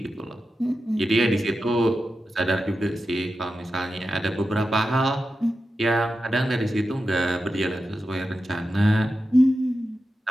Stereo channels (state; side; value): normal; both; correlation 0.91